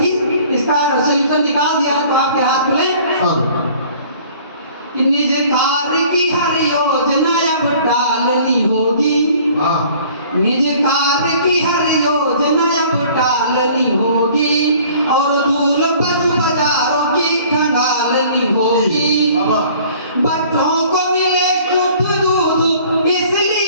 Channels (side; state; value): both; inverted; correlation -0.52